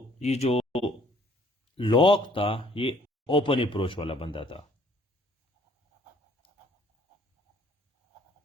ये जो लॉक था ये open approach वाला बंदा था,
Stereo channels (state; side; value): normal; both; correlation 0.60